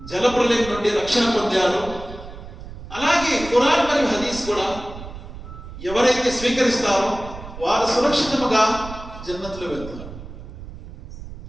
జలప్రలయం నుండి రక్షణ పొందారు, అలాగే ఖురాన్ మరియు హదీస్ కూడా ఎవరైతే స్వీకరిస్తారో వారు సురక్షితముగా జన్నతులో వెళ్తారు.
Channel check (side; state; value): right; noise; rumble, 13 dB below the sound